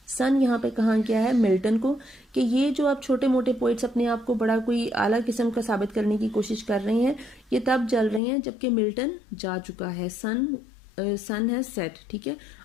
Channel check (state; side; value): drops out; right; at 8.2 s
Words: सन यहाँ पे कहा गया है मिल्टन को कि ये जो आप छोटे मोटे पोइट्स अपने आप को बड़ा कोई आला किस्म का साबित करने की कोशिश कर रहे हैं, ये तब जल रहे हैं जबकि मिल्टन जा चुका है। सन हैज सेट, ठीक है।